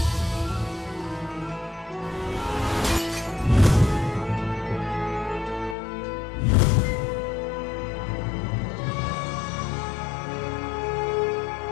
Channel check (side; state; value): right; drops out; at 5.8 s